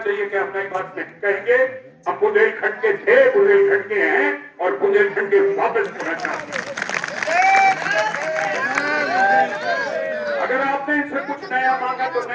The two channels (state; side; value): identical; both; correlation 1.00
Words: कि हम नई बात नहीं कहेंगे। हम बुंदेलखंड के थे, बुंदेलखंड के हैं और बुंदेलखंड के वापस होना चाहते हैं। अगर आपने इनसे कुछ नया मांगा तो